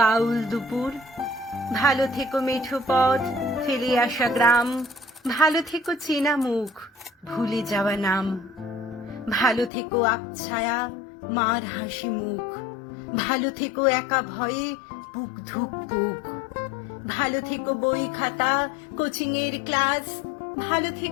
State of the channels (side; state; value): right; drops out; at 9.7 s